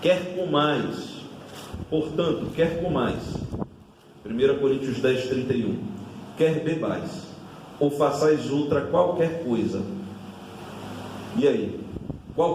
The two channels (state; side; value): identical; both; correlation 1.00